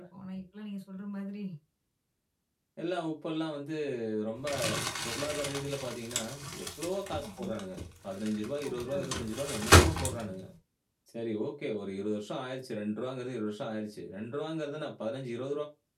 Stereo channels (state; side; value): identical; both; correlation 1.00